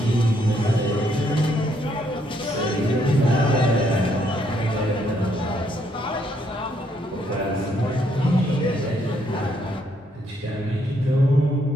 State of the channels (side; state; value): both; normal; correlation 0.72